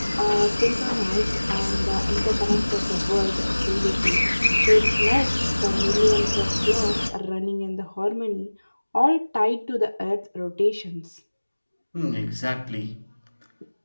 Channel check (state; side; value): inverted; both; correlation -1.00